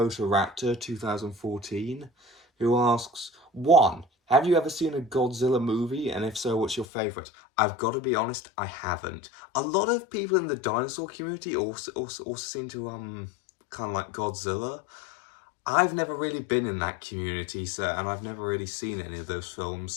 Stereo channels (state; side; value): drops out; right; at 6.9 s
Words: 2014, who asks, 1. Have you ever seen a Godzilla movie, and if so, what's your favourite? I've got to be honest, I haven't. A lot of people in the dinosaur community also seem to kind of like Godzilla. I've never really been in that community, and I've never really seen any of those films,